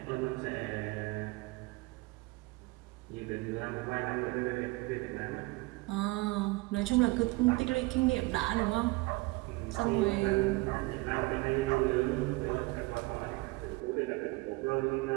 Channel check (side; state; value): left; quieter; 23.4 dB